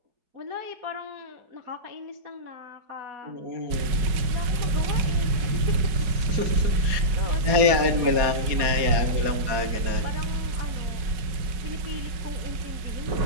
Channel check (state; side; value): late; left; 4.8 ms